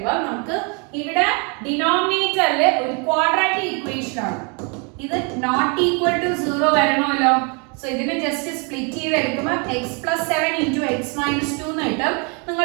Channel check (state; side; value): quieter; left; 34.4 dB